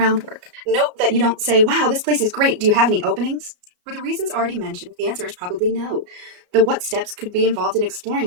Note that you don't say, wow, this place is great. Do you have any openings? For the reasons already mentioned, the answer is probably no. The what steps could be involved in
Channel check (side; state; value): left; late; 33 ms